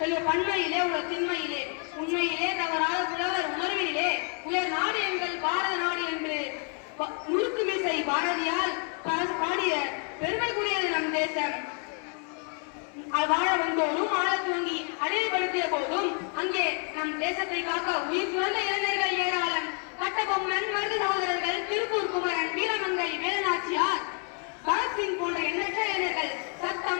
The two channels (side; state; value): right; quieter; 39.6 dB